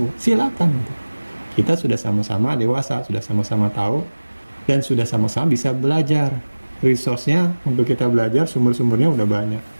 Silakan. Kita sudah sama-sama dewasa, sudah sama-sama tahu, dan sudah sama-sama bisa belajar. Resource-nya untuk kita belajar, sumber-sumbernya udah banyak.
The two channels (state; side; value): inverted; both; correlation -1.00